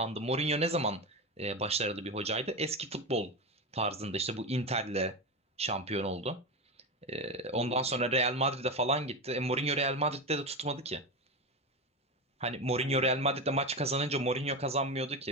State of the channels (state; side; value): normal; both; correlation 0.18